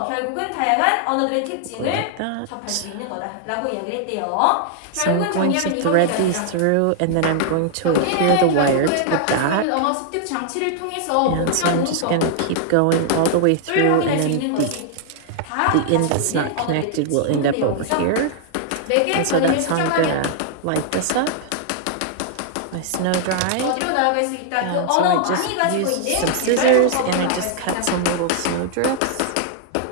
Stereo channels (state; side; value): different; both; correlation -0.01